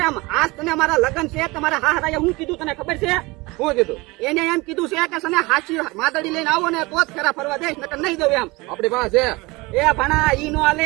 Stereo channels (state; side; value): quieter; left; 23.4 dB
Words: આજ તને મારા લગ્ન છે તમારા હાહરાએ હું કીધું તને ખબર છે? શું કીધું? એને એમ કીધું છે કે સને હાચી માદડી લઈને આવો ને તો જ ફેરા ફરવા દઈશ નકર નહીં દઉં એમ. આપણી પાસે એ ભણા ઈ નો આલે